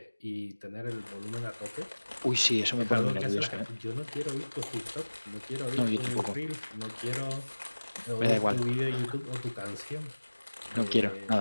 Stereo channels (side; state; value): both; inverted; correlation -1.00